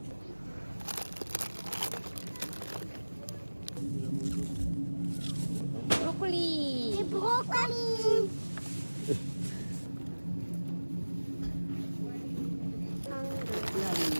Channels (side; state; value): both; inverted; correlation -1.00